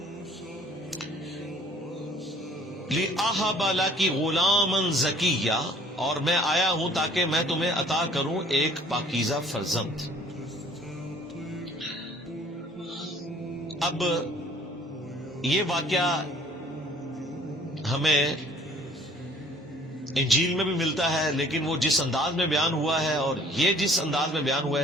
لِأَهَبَ لَكِ غُلَامًا زَكِيًّا، اور میں آیا ہوں تاکہ میں تمہیں عطا کروں ایک پاکیزہ فرزند. اب یہ واقعہ ہمیں انجیل میں بھی ملتا ہے، لیکن وہ جس انداز میں بیان ہوا ہے اور یہ جس انداز میں بیان ہوا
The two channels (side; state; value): both; normal; correlation 0.54